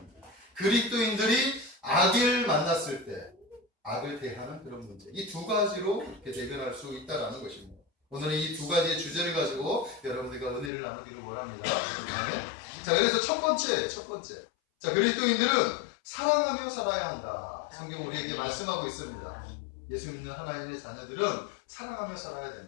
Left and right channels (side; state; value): right; drops out; at 10.7 s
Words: 그리스도인들이 악을 만났을 때 악을 대하는 그런 문제. 이 두 가지로 이렇게 대변할 수 있다는 것입니다. 오늘은 이 두 가지의 주제를 가지고 여러분들과 은혜를 나누기를 원합니다. 자, 그래서 첫 번째. 자, 그리스도인들은 사랑하며 살아야 한다. 성경 우리에게 말씀하고 있습니다. 예수 믿는 하나님의 자녀들은 사랑하며 살아야